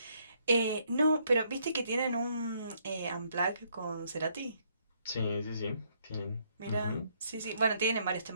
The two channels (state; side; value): inverted; both; correlation -0.70